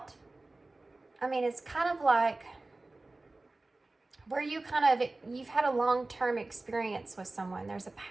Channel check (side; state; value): left; quieter; 3.0 dB